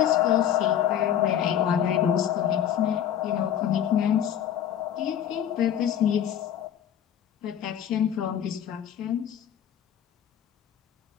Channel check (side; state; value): right; quieter; 9.8 dB